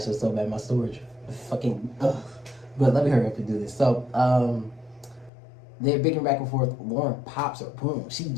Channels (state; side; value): drops out; right; at 5.3 s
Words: it's so bad, my storage. Fucking, ugh. But let me hurry up and do this. So, they're bickering back and forth. Lauren pops her, boom. She